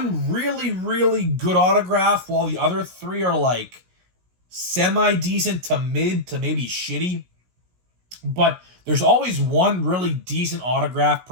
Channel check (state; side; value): late; left; 17 ms